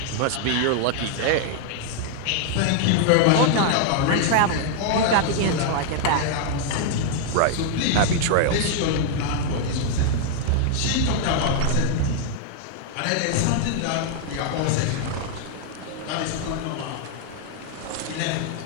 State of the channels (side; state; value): both; different; correlation 0.00